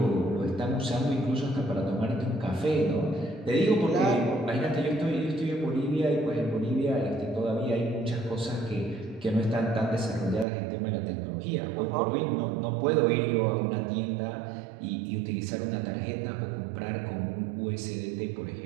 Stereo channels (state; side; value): drops out; left; at 10.5 s